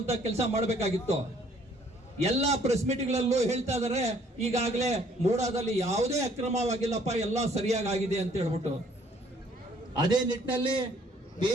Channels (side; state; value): both; normal; correlation 0.61